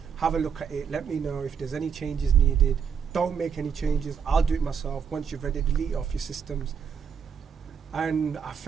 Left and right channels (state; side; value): quieter; left; 7.0 dB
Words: Have a look at it. Let me know if there's any changes needed. Don't make any changes. I'll do it myself. Once you've ready, delete it off your systems. And I